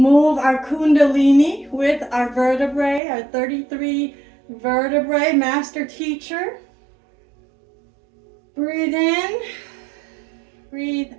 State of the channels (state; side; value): drops out; left; at 3.0 s